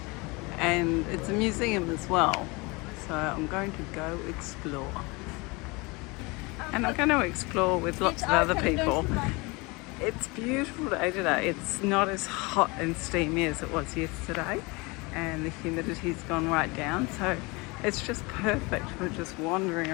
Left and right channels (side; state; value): right; quieter; 26.2 dB